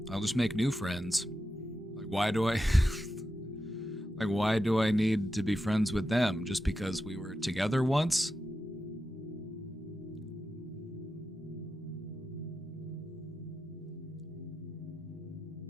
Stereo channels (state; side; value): normal; both; correlation 0.89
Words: I'll just make new friends. Like, why do I... like, why do I need to be friends with them? Just because we were together once?